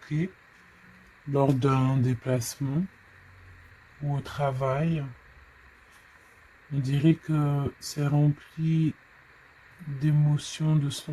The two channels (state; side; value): identical; both; correlation 1.00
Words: lors d'un déplacement ou au travail. On dirait que c'est rempli d'émotions, de